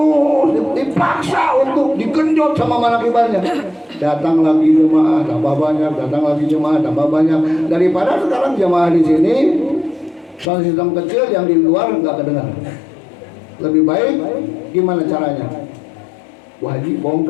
dipaksa untuk digenjot sama manakibannya. Datang lagi jemaah tambah banyak, daripada sekarang jemaah di sini sound system kecil yang di luar nggak kedengar. Lebih baik gimana caranya? Wah, Haji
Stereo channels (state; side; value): drops out; right; at 10.5 s